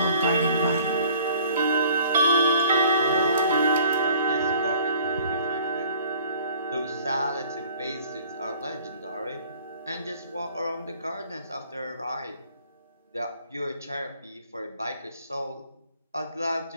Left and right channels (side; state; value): both; inverted; correlation -0.52